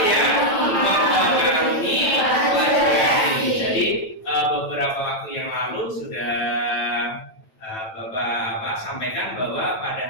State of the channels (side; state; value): right; late; 9.0 ms